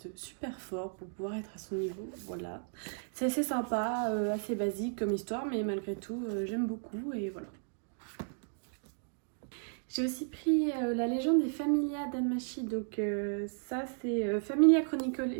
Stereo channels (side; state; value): left; silent; 55 dB below the other